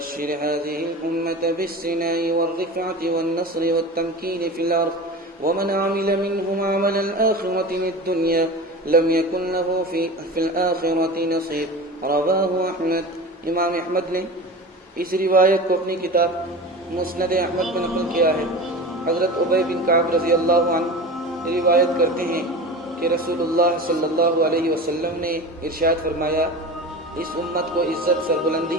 هذه الأمة بالسناء والرفعة والنصر والتمكين في الأرض ومن عمل منهم عمل الآخرة للدنيا لم يكن له في الآخرة نصيب رواه أحمد. امام احمد نے اس روایت کو اپنی کتاب مسند احمد میں نقل کیا ہے. حضرت ابی بن کعب رضی اللہ عنہ روایت کرتے ہیں کہ رسول اللہ صلی اللہ علیہ وسلم نے ارشاد فرمایا اس امت کو عزت سربلندی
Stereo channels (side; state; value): both; normal; correlation 0.32